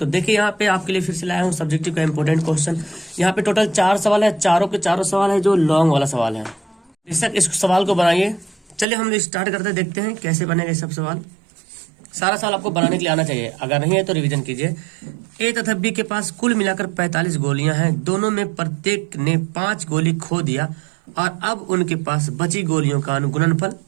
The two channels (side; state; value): left; drops out; at 8.8 s